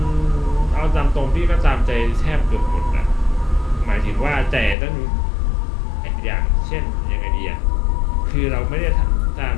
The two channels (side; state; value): right; drops out; at 4.8 s